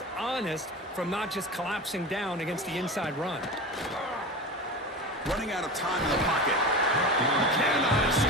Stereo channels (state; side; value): normal; both; correlation 0.29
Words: honest from not just collapsing down against the inside run. Running out of time in the pocket. Cannot